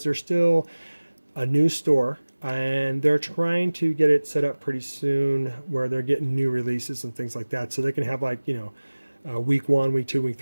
they're still a new store, and they're trying to get it set up pretty soon where they're getting new releases and things like that, so they can have, like, you know, week 1, week 2, week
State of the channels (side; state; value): both; inverted; correlation -1.00